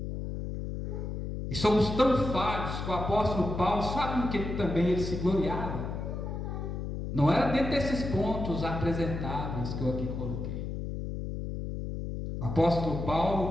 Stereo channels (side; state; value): left; noise; hum, 5 dB below the sound